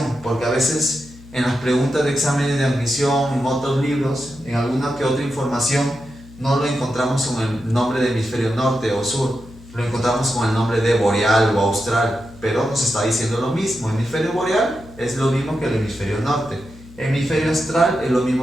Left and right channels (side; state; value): left; noise; hum, 20 dB below the sound